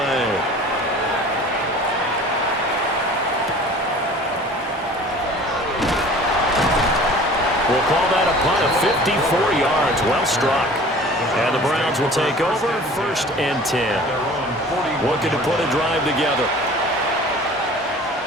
We'll call that a punt of 54 yards. Well struck. And the Browns will take over 1st and 10. Looking to put a drive together.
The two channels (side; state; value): both; normal; correlation 0.45